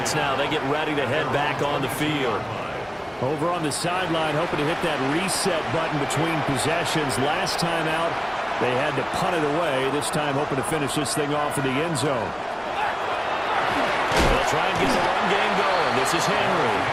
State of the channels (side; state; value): both; identical; correlation 1.00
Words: now, they get ready to head back on the field. Over on the sideline, hoping to hit that reset button between possessions. Last time out, they had to punt it away. This time hoping to finish this thing off in the end zone. They'll try and get the run game going. This is Henry.